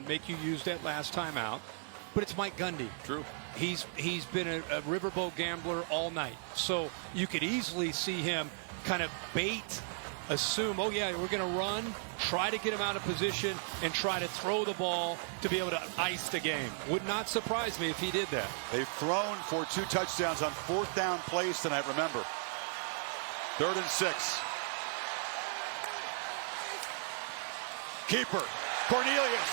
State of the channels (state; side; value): silent; left; digital silence